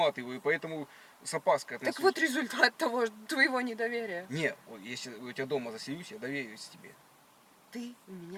поэтому с опаской отношусь. Так вот результат твоего недоверия. Не, вот если у тебя дома заселюсь, я доверюсь тебе. Ты у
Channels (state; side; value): identical; both; correlation 1.00